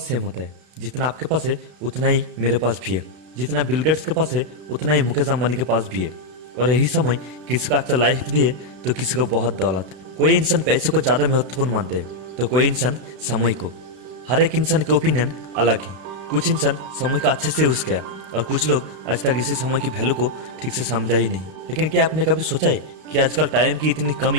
सेम होता है। जितना आपके पास है उतना ही मेरे पास भी है। जितना बिल गेट्स के पास है उतना ही मुकेश अंबानी के पास भी है। और यही समय किसी को अच्छा लाइफ दिए तो किसी को बहुत दौलत। कोई इंसान पैसे को ज्यादा महत्वपूर्ण मानते हैं तो कोई इंसान समय को। हर एक इंसान के ओपिनियन अलग है। कुछ इंसान समय को अच्छे से यूज किया और कुछ लोग आज तक इसी समय की वैल्यू को ठीक से समझा ही नहीं। लेकिन क्या आपने कभी सोचा है कि आजकल टाइम की इतनी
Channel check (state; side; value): late; left; 32 ms